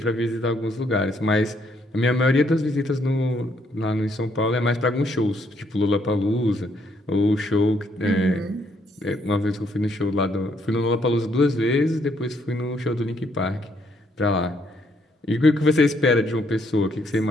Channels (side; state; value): both; normal; correlation 0.71